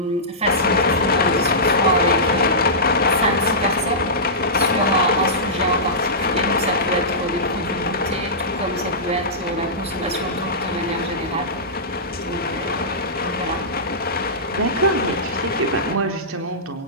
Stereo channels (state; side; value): normal; both; correlation -0.17